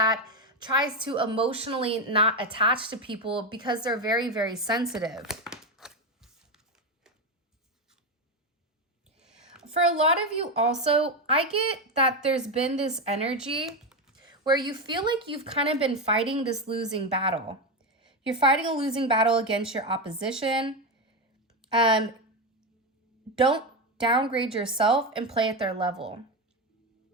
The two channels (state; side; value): normal; both; correlation 0.12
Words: tries to emotionally not attach to people because they're very, very sensitive. For a lot of you also, I get that there's been this energy where you feel like you've kind of been fighting this losing battle. You're fighting a losing battle against your opposition. Don't downgrade yourself and play at their level.